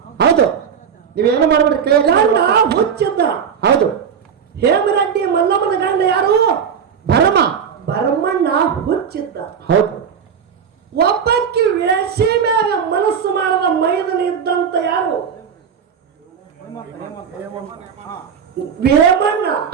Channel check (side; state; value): left; quieter; 7.2 dB